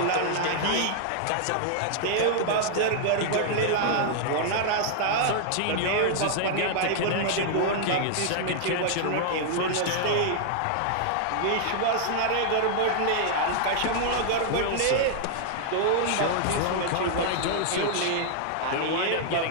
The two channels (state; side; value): different; both; correlation -0.01